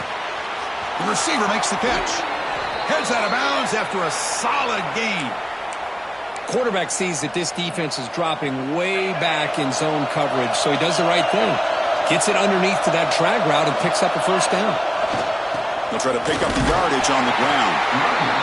The receiver makes the catch. Heads out of bounds after a solid gain. Quarterback sees that this defense is dropping way back in zone coverage, so he does the right thing. Gets it underneath to that drag route and picks up a first down. They'll try to pick up the yardage on the ground.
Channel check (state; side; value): identical; both; correlation 1.00